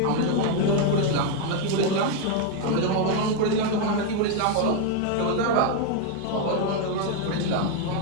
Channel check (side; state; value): both; different; correlation 0.01